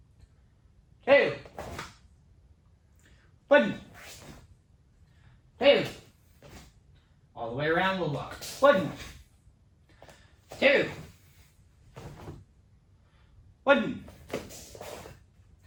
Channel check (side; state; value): both; identical; correlation 1.00